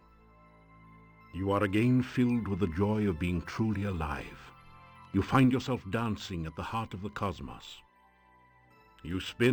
You are again filled with the joy of being truly alive. You find yourself dancing at the heart of the cosmos. You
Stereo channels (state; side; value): identical; both; correlation 1.00